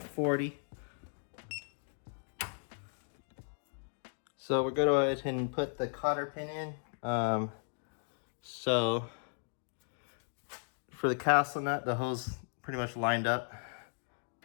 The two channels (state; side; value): silent; right; digital silence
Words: 40. So we're going to go ahead and put the cotter pin in. So for the castle nut, the hose pretty much lined up.